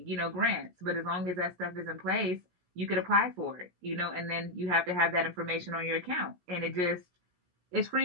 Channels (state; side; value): late; left; 17 ms